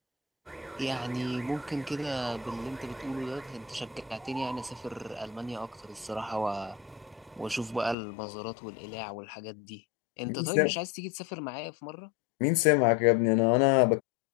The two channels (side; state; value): right; drops out; at 8.0 s